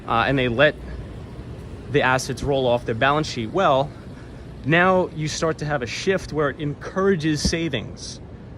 and they let the assets roll off their balance sheet, well, now you start to have a shift where it encourages savings,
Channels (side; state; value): both; identical; correlation 1.00